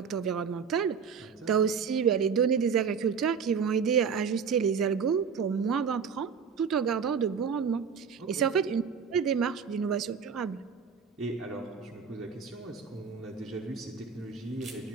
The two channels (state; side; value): quieter; left; 6.4 dB